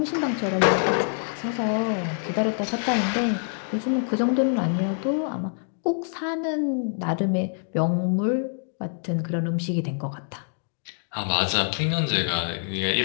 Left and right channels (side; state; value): right; silent; digital silence